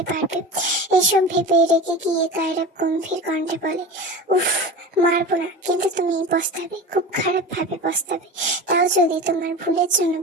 পারবে। এসব ভেবে রেগে গিয়ে কায়রাপ গম্ভীর কণ্ঠে বলে, উফ, মারবো না, কিন্তু তুমি পস্তাবে, খুব খারাপ ভাবে পস্তাবে, তাও যদি তোমার ভুলের জন্য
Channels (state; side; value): normal; both; correlation 0.30